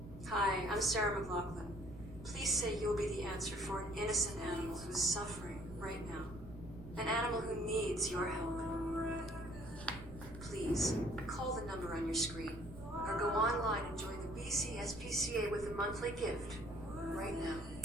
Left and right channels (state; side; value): noise; right; rumble, 14 dB below the sound